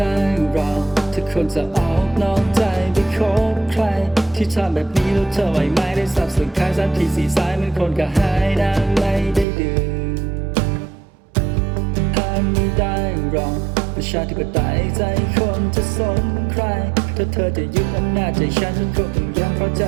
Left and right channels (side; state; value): left; drops out; at 9.5 s